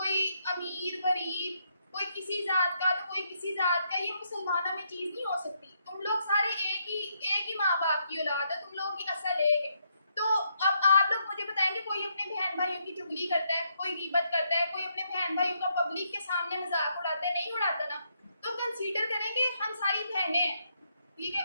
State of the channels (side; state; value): both; inverted; correlation -0.76